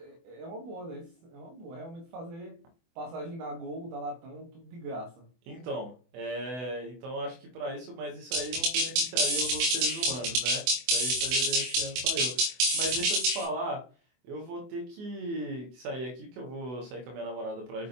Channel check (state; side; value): late; left; 24 ms